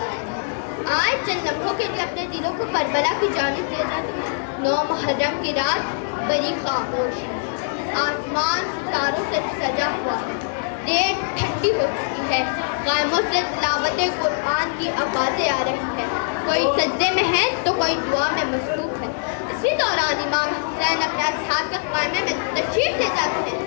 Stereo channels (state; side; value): silent; right; digital silence